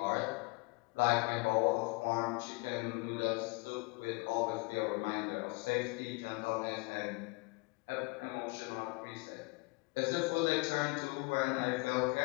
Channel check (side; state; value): right; quieter; 28.4 dB